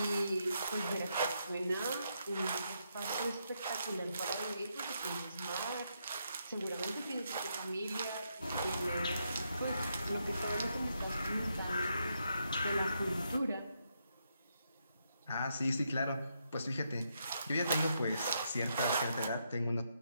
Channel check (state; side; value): inverted; both; correlation -0.79